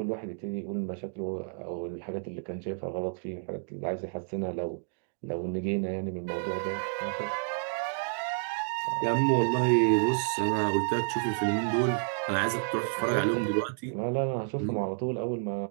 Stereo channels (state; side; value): silent; left; digital silence